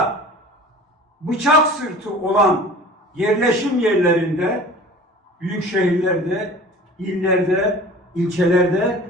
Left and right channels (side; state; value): both; normal; correlation 0.42